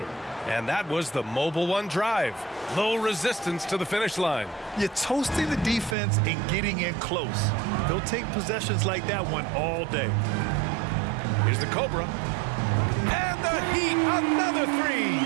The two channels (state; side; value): drops out; left; at 6.0 s